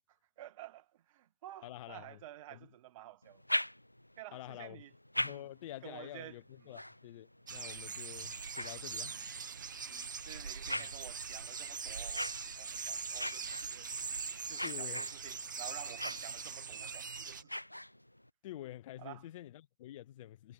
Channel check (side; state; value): both; inverted; correlation -0.60